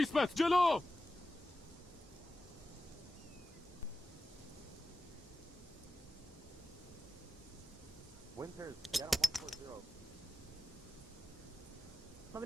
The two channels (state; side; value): normal; both; correlation 0.93